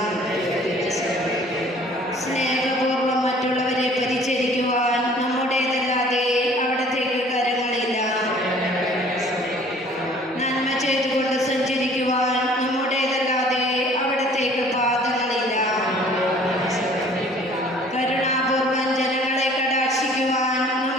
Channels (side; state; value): both; normal; correlation 0.53